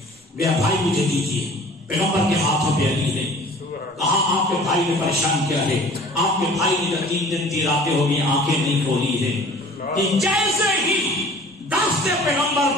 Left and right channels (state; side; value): normal; both; correlation 0.48